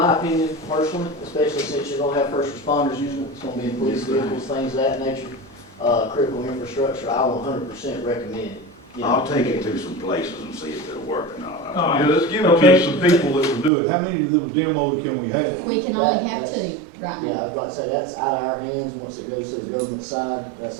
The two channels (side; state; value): left; drops out; at 13.7 s